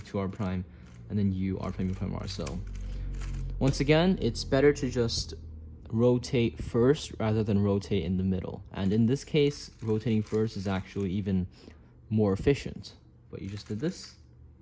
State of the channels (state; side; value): identical; both; correlation 1.00